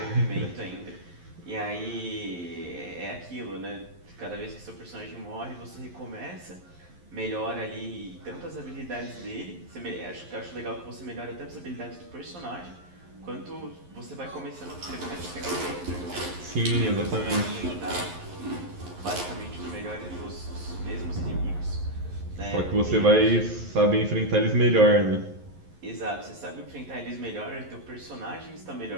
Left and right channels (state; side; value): late; left; 11 ms